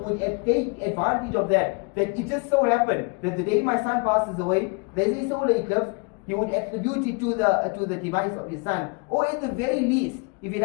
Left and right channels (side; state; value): right; quieter; 32.1 dB